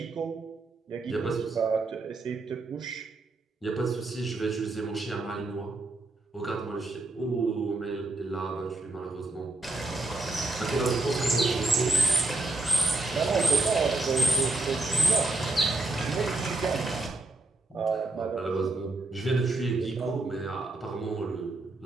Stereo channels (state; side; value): quieter; left; 3.0 dB